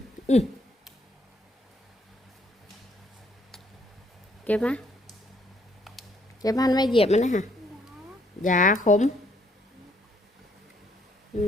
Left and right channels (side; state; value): both; normal; correlation 0.67